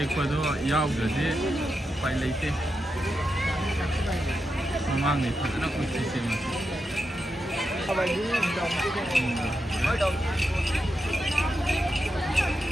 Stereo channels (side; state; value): both; normal; correlation 0.87